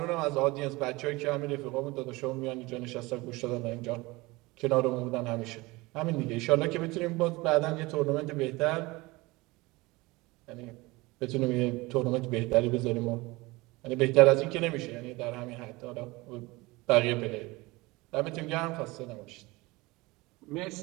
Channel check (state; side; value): quieter; left; 22.4 dB